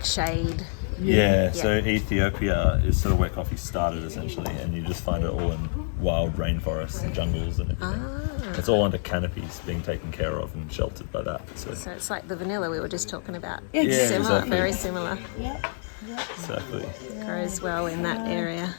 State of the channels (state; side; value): silent; right; digital silence